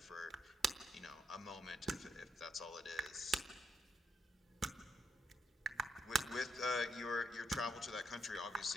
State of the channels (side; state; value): both; normal; correlation 0.78